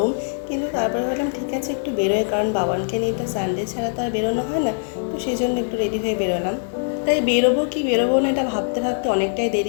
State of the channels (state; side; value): silent; right; 64 dB below the other